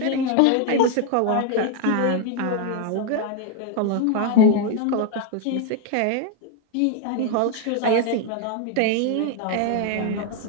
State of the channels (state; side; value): different; both; correlation 0.01